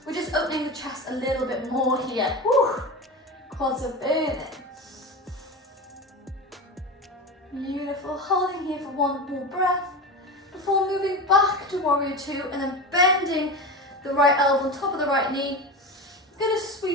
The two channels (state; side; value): normal; both; correlation 0.25